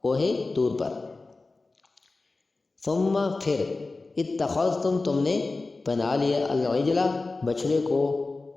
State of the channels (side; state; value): right; quieter; 3.5 dB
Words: کوہ طور پر۔ ثم پھر اتخذتم تم نے بنا لیا العجلہ بچڑے کو،